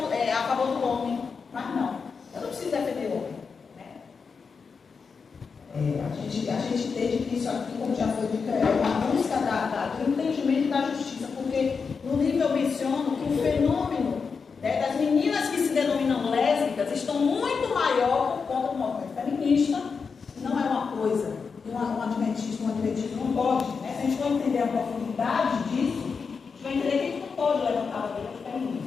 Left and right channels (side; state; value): right; quieter; 5.4 dB